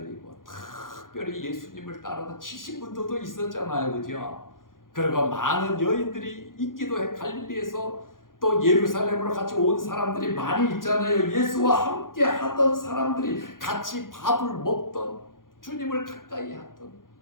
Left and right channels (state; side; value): late; right; 0.90 ms